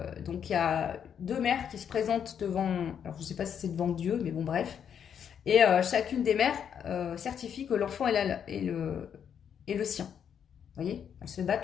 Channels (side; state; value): right; quieter; 8.2 dB